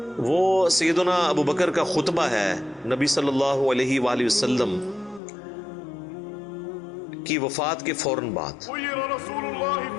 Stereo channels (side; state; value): right; drops out; at 5.2 s